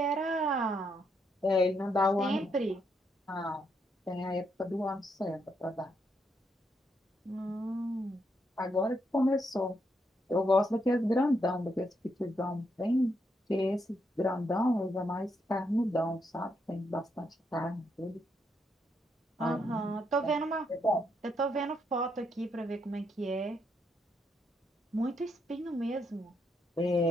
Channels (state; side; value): normal; both; correlation 0.78